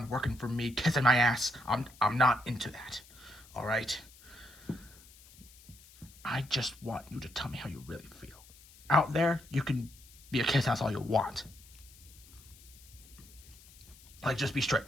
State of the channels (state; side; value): noise; left; hiss, 23 dB below the sound